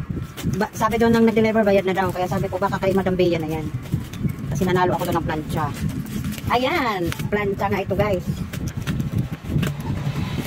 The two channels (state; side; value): identical; both; correlation 1.00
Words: Sabi doon nang nag-deliver, bayad na daw. Kaya sabi ko baka kay Madam Bea na yan. Kasi nanalo ako doon ng plancha. Ayan! Plancha nga ito guys.